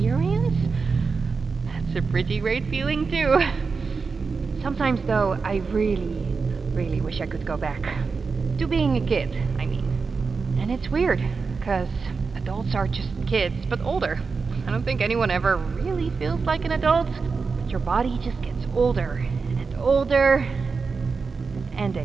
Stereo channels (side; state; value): left; quieter; 4.8 dB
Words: that's a pretty great feeling too. Sometimes though, I really wish I could go back. To being a kid, I mean. And it's weird, because adults are just kids, but older. I don't think anyone ever really feels like an adult, but your body just gets older and older, and